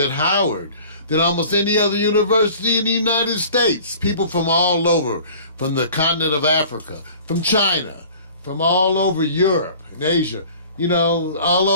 Howard than almost any other university in the United States. People from all over, from the continent of Africa, from China, from all over Europe and Asia, all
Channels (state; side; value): inverted; both; correlation -0.46